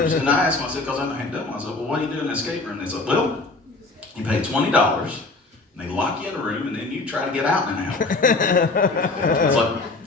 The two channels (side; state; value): right; quieter; 3.4 dB